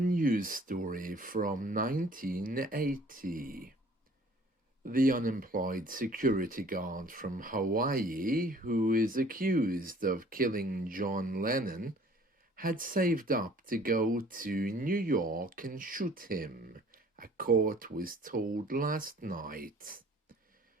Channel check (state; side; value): normal; both; correlation 0.53